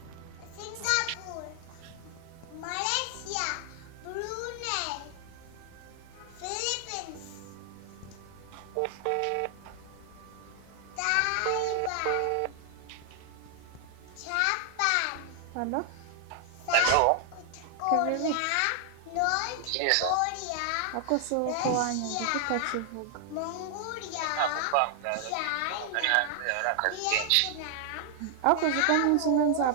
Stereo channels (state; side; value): different; both; correlation 0.00